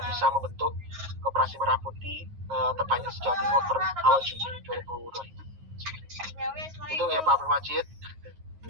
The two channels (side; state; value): left; late; 9.5 ms